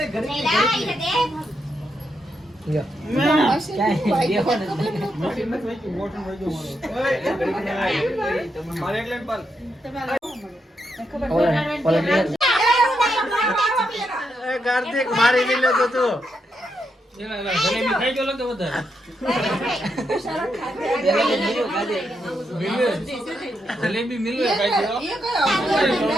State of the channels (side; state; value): both; normal; correlation 0.82